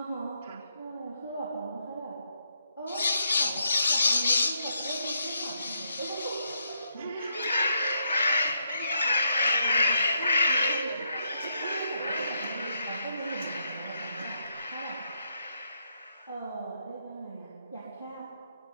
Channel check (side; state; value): both; inverted; correlation -0.77